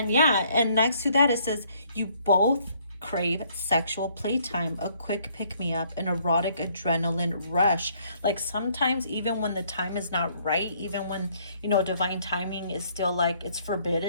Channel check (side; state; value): both; inverted; correlation -0.65